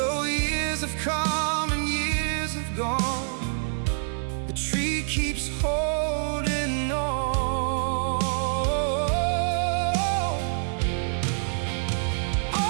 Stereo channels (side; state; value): left; silent; digital silence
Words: years have come and years have gone, the tree keeps holding on.